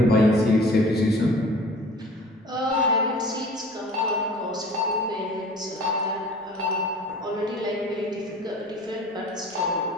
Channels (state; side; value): normal; both; correlation 0.45